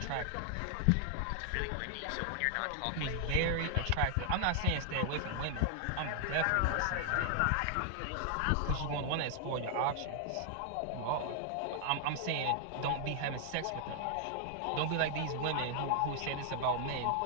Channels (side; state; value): both; different; correlation 0.00